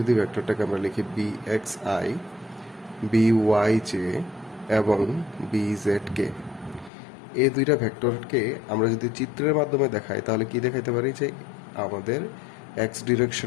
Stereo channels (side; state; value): right; drops out; at 6.9 s